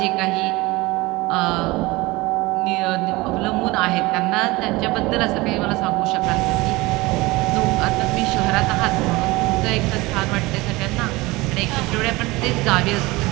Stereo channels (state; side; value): quieter; left; 21.7 dB